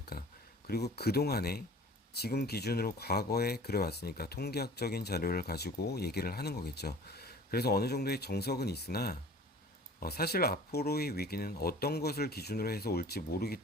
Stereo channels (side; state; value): both; normal; correlation 0.45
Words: 그리고 그동안에 지금 기준으로 과거에 그래왔으니까 통계학적인 자료를 가지고 얘기를 하는 거겠죠. 그래서 어느 정도의 정석은 있으나 사실 앞으로의 위기는 어떤 것을 기준으로 해서 올지 모르기